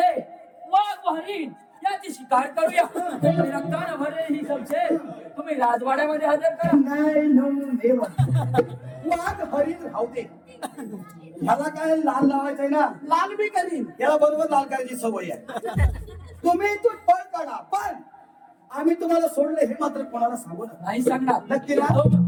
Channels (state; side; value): identical; both; correlation 1.00